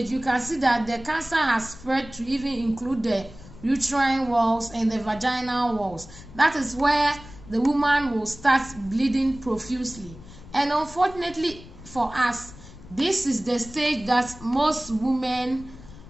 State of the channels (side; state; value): left; noise; rumble, 18 dB below the sound